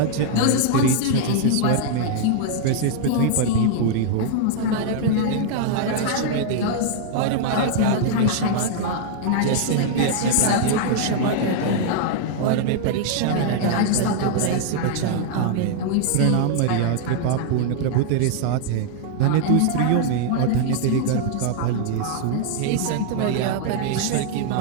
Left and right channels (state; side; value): different; both; correlation -0.01